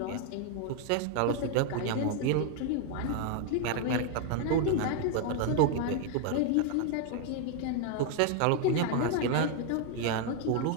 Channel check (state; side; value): different; both; correlation 0.00